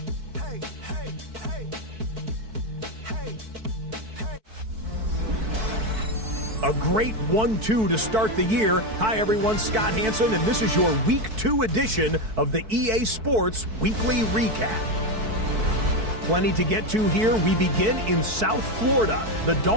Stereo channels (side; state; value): left; late; 4.6 ms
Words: Hey, hey, hey. Hey, hey. A great 1-2 to start the year. Hi, everyone. Scott Hansen, and this is your Week 2 edition of the EA Sports Weekly Recap. Plenty to get to here. We begin in South Florida. The